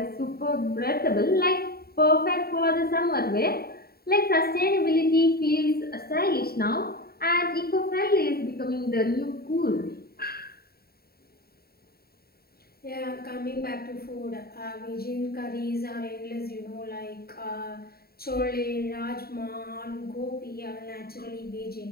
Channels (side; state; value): right; late; 0.45 ms